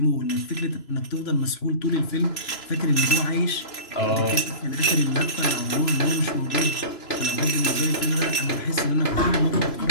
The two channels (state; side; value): late; right; 3.0 ms